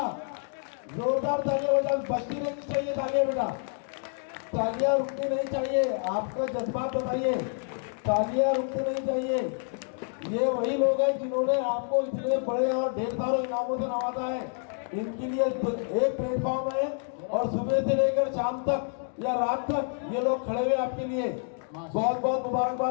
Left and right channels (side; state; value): right; silent; 59 dB below the other